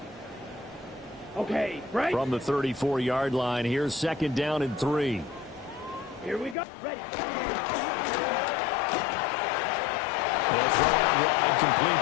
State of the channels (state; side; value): drops out; right; at 6.6 s